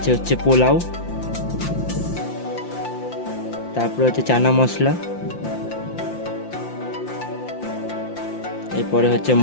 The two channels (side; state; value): right; late; 5.8 ms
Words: হচ্ছে পোলাও, তারপরে হচ্ছে চানা মশলা, এরপরে হচ্ছে